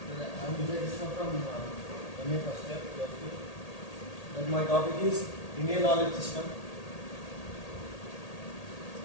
Vijay Krishna from MA first year, philosophy. And my topic is Indian knowledge system.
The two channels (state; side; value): late; right; 1.8 ms